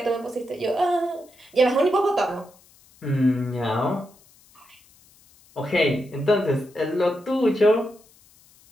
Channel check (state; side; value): noise; left; hiss, 29 dB below the sound